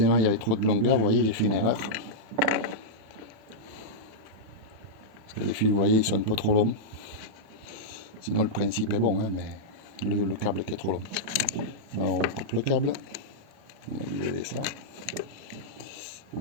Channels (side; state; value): left; late; 37 ms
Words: il y avait trop de longueur, vous voyez j'ai fait une erreur. Parce que les fils, vous voyez, ils sont un peu trop longs. Sinon le principe est bon, hein, mais le câble qui est trop long. Alors on coupe le câble, on va enlever ça.